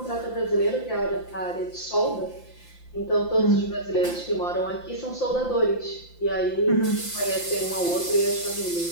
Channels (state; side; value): late; right; 5.8 ms